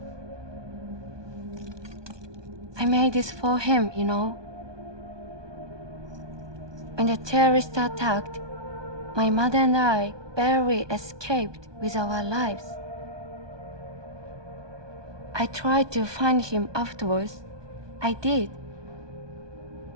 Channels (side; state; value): left; late; 1.2 ms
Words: I made this for him, you know. When the terrorists attacked, my mother and I barely escaped with our lives. I tried to find him afterwards. I did.